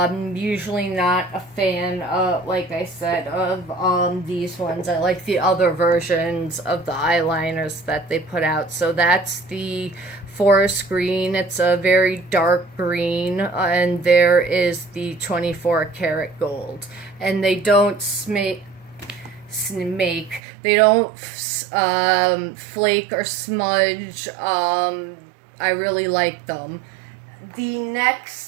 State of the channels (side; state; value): left; drops out; at 20.4 s